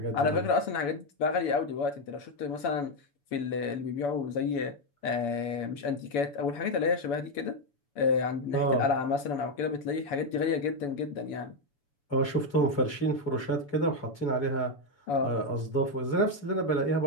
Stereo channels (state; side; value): late; right; 7.0 ms